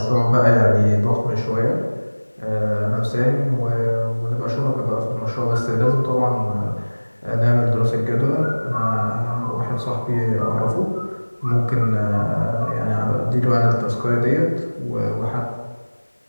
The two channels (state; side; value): inverted; both; correlation -1.00